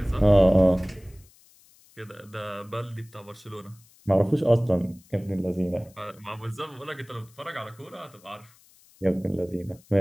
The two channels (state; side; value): noise; left; hiss, 28 dB below the sound